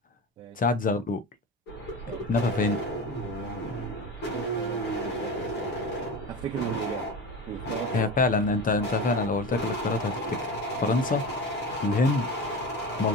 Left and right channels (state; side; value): normal; both; correlation 0.28